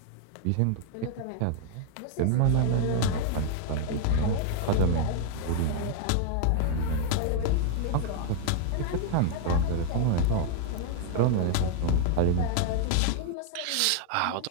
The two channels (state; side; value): different; both; correlation 0.00